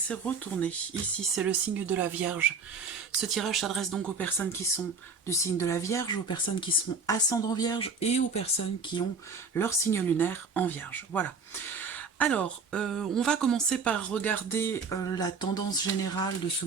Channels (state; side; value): quieter; left; 4.6 dB